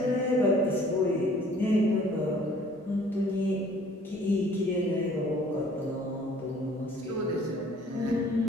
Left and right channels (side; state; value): both; normal; correlation 0.54